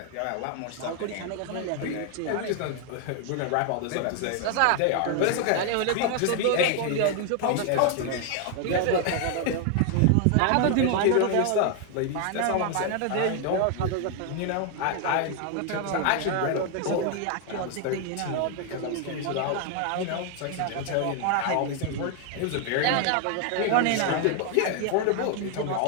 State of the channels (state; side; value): different; both; correlation 0.00